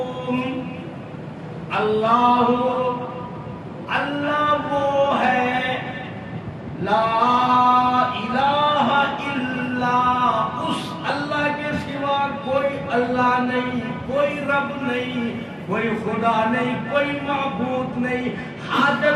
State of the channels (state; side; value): identical; both; correlation 1.00